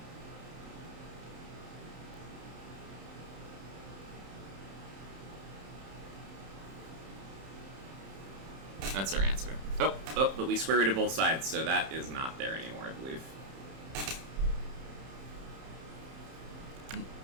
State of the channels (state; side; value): late; left; 31 ms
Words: That's our answer. oh, but we square rooted both sides, so that is not there anymore, I believe.